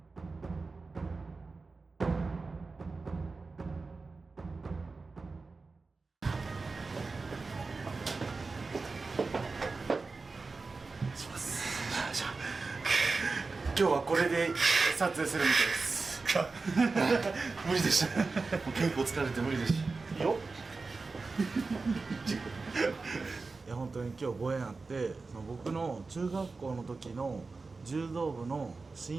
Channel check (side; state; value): left; quieter; 4.0 dB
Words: 今日はこれで撮影するみたいです。無理でした。もう結構疲れて無理でした。よいや本当に今日ご縁あって、その僕の中学校の時の柔道部の